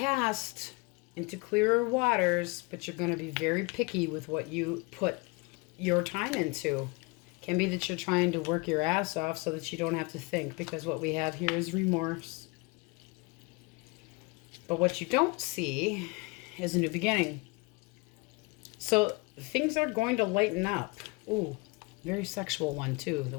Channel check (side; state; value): right; quieter; 27.4 dB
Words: into clearer waters, but you're going to be very picky with what you put your time into. Can be that you're trying to work your ass off so that you don't have to think, because what we have here is remorse. But what you don't see is a new beginning. So things are going to lighten up. Ooh, very sexual one too that